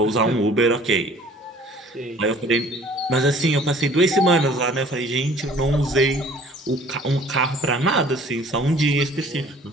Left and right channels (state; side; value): normal; both; correlation 0.52